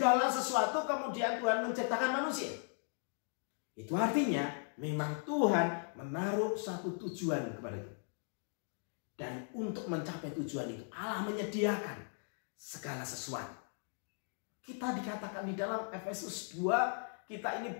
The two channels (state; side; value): silent; right; 53 dB below the other